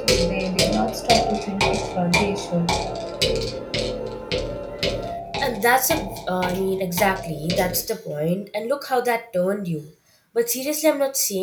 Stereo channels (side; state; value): both; identical; correlation 1.00